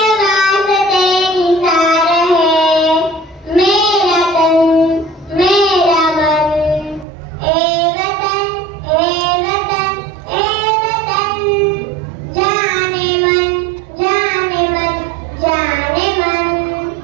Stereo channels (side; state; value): left; drops out; at 7.1 s